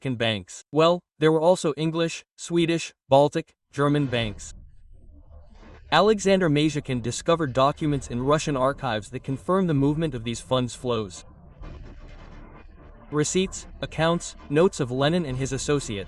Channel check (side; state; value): both; identical; correlation 1.00